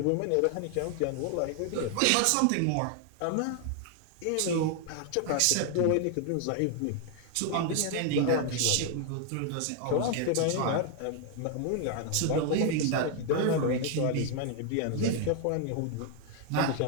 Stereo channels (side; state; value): both; different; correlation 0.00